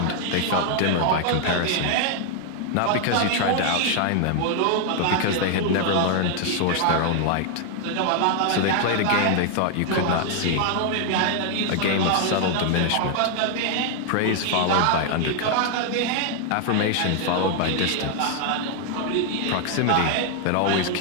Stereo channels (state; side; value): different; both; correlation 0.00